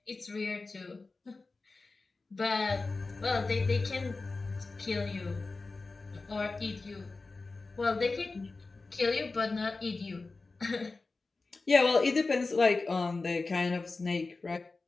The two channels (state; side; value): quieter; right; 3.7 dB